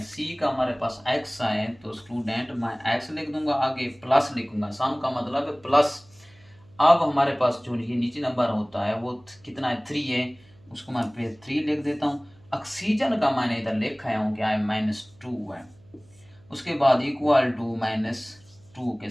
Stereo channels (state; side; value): noise; right; hum, 29 dB below the sound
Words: C का हमारे पास X आए तो स्टूडेंट मैं X लिख दूंगा, आगे प्लस लिखूंगा, सम का मतलब है प्लस। अब हमारे पास जो ये नीचे नंबर होता है वो कितना है, 3 है, उसको मैं फिर 3 लिख देता हूँ। ऑक्सीजन का मैंने इधर लिखा है क्या है, -2 है। उसके बाद इक्वल टू -2 के